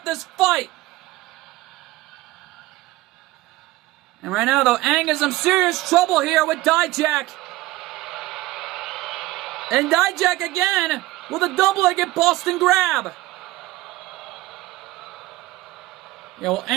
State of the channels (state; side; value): quieter; left; 18.2 dB